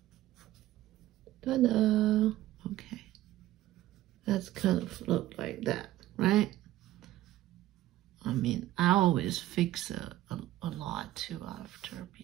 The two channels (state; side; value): quieter; left; 15.0 dB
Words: Ta-da! Okay, that's kind of look like that, right? I mean, I always fix a lot too after,